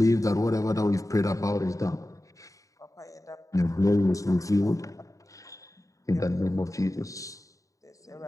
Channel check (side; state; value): right; late; 0.16 ms